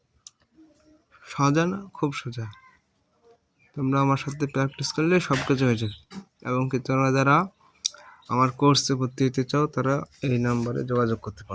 সোজা না, খুব সোজা। তোমরা আমার সাথে প্র্যাকটিস করলে সব কিছু হয়ে যাবে। এবং কি তোমরা যারা আমার কোর্সে ভর্তি হতে চাও তারা এই নাম্বারে যোগাযোগ করতে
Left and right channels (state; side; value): identical; both; correlation 1.00